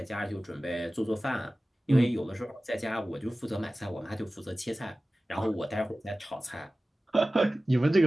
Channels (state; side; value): normal; both; correlation 0.96